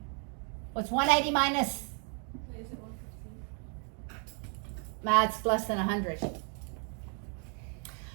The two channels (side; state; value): left; quieter; 37.9 dB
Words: What's 180 minus? Is it 115? That's less than 100.